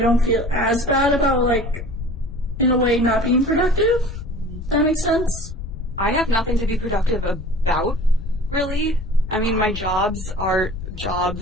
feel as bad about, like, in a way, not being productive. That makes sense? I have nothing to be productive about, really. I mean, my jobs are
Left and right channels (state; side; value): noise; left; rumble, 9 dB below the sound